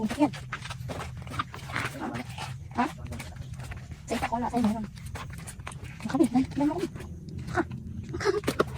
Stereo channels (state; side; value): identical; both; correlation 1.00